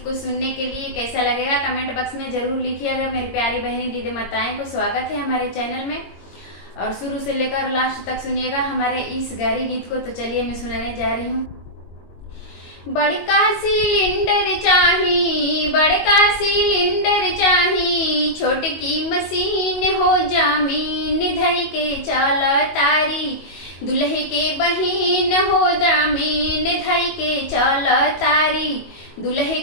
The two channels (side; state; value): right; late; 22 ms